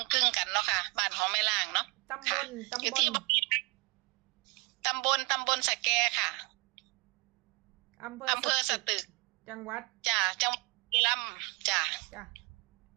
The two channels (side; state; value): left; quieter; 28.4 dB